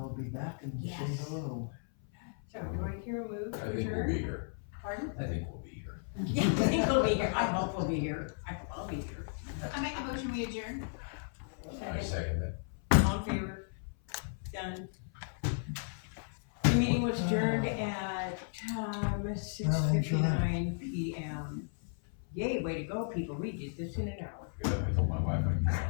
be back and say Yes. hello. So do I hear a move I to think we'll adjourn? be here. Pardon? I think we'll be here. Yeah, I think we'll be here. I hope we'll be here. I hope I'll be here. I make a motion, we adjourn. I second that. All in favor? Done. The meeting was adjourned at 6:59 PM. Yay, way to go, people. We did this in an hour. Good, I told my wife I'd be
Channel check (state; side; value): silent; right; 55 dB below the other